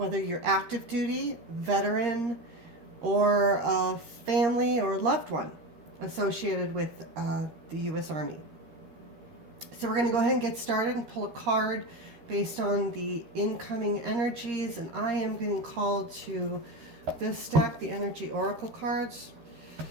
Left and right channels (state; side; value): late; left; 13 ms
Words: you're active duty, veteran, or a family or loved one associated with the U.S. Army. So we're going to go ahead and get started and pull a card based on the incoming energies, and I am getting called to this deck, the Energy Oracle cards.